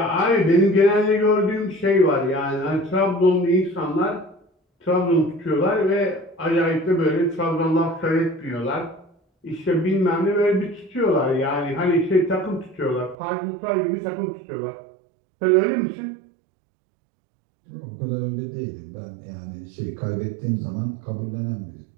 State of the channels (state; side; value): drops out; left; at 13.2 s